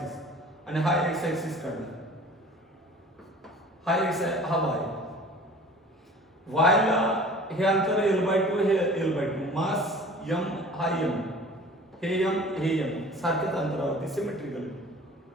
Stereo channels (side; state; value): both; normal; correlation 0.45